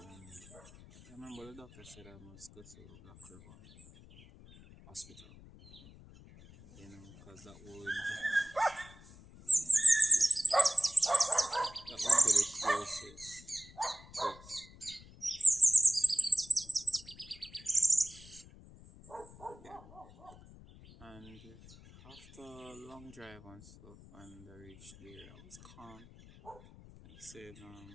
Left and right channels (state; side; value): noise; left; rumble, 20 dB below the sound